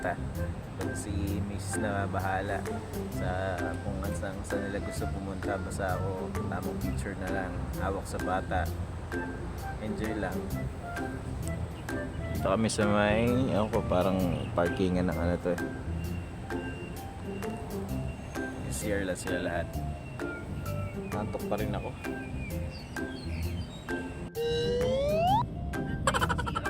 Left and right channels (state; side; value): identical; both; correlation 1.00